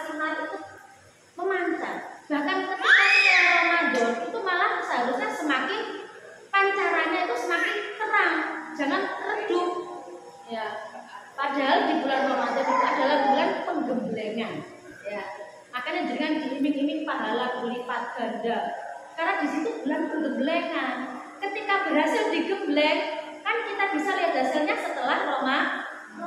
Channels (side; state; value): both; identical; correlation 1.00